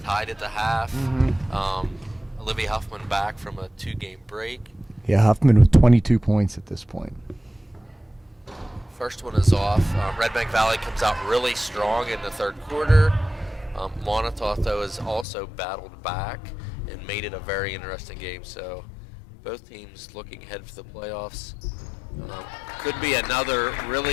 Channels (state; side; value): drops out; right; at 15.2 s